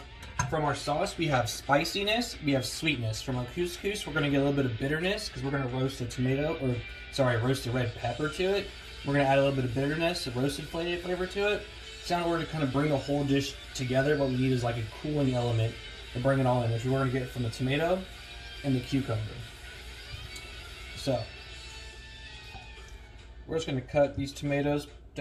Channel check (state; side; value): identical; both; correlation 1.00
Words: from our sauce, we have spiciness, we have sweetness. From our couscous, we're going to get a little bit of bitterness because we're going to roast roast the red pepper to it. We're going to add a little bit of bitterness, a roasted flavor to it. So in order to kind of bring the whole dish together, what we need is like a cooling element to bring it all in, which we're going to get from the tomato and the cucumber. So, we're just going to cut these tomatoes